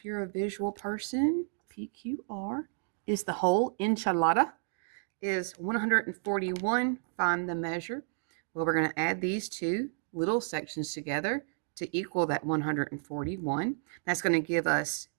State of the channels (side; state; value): left; silent; digital silence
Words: you're a visual person, PQR is the whole. Enchilada is 141. Find the measure. Well, we're going to add these 2 little sections together to equal that 141. That's going to give us